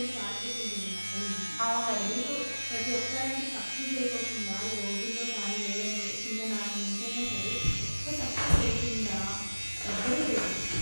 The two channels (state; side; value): inverted; both; correlation -1.00